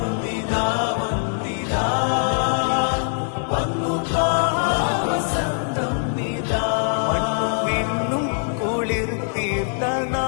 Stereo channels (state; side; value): silent; right; 64 dB below the other